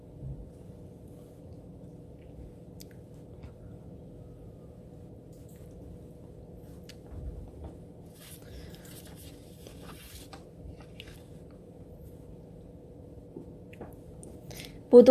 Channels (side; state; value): both; identical; correlation 1.00